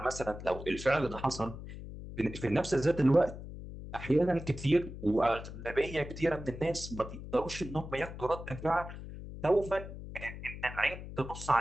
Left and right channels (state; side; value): noise; left; hum, 11 dB below the sound